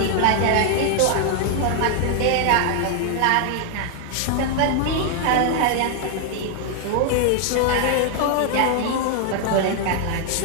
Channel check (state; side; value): different; both; correlation 0.00